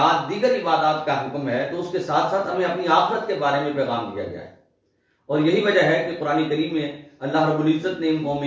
دیگر عبادات کا حکم ہے تو اس کے ساتھ ساتھ ہمیں اپنی آخرت کے بارے میں پیغام دیا گیا ہے. اور یہی وجہ ہے کہ قرآن کریم میں اللہ رب العزت نے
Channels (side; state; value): both; identical; correlation 1.00